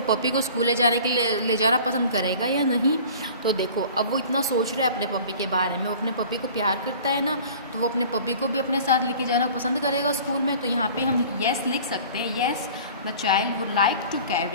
पपी को स्कूल ले जाना पसंद करेगा या नहीं। तो देखो अब वो इतना सोच रहा है अपने पपी के बारे में, वो अपने पपी को प्यार करता है ना, तो वो अपने पपी को भी अपने साथ लेके जाना पसंद करेगा स्कूल में। तो यहाँ पे हम येस लिख सकते हैं, yes the child would like to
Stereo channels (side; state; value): both; inverted; correlation -0.44